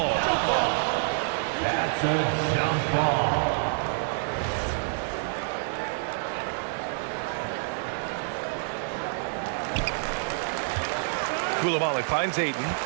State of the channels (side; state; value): left; silent; 55 dB below the other